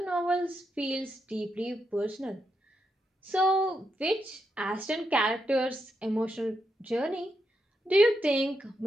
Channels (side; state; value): both; normal; correlation 0.83